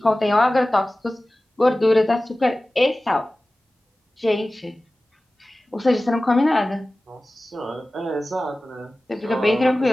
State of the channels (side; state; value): both; normal; correlation 0.96